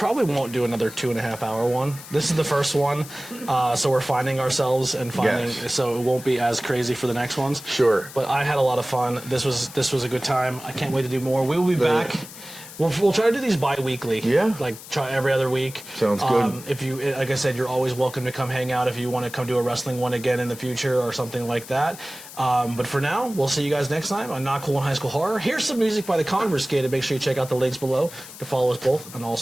won't do another 2.5 hour one. This is the first one, so we're finding ourselves and finding. Yes. So it won't be as crazy for the next ones. Sure. But I had a lot of fun. This was a good time. I can't wait to do more. We will be back. We'll try to do these bi-weekly. Yeah. Like try every other week. Sounds good. If you, like I said, you're always welcome to come hang out if you want to come do a wrestling one again in the future or something like that. But for now, we'll see you guys next time on Not Cool in High School Horror. Here's some music by the Conversated. Make sure you check out the links below to follow us both on all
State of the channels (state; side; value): noise; left; hiss, 15 dB below the sound